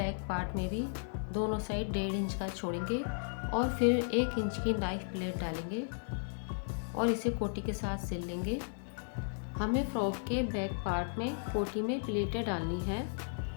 पार्ट में भी दोनों साइड 1.5 इंच का छोड़ेंगे और फिर 1 इंच की नाइफ प्लेट डालेंगे और इसे कोटी के साथ सिल लेंगे। हमें फ्रॉक के बैक पार्ट में कोटी में प्लेटें डालनी है।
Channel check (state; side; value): silent; right; digital silence